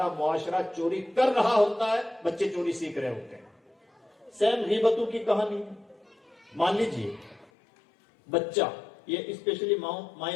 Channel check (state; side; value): drops out; right; at 7.5 s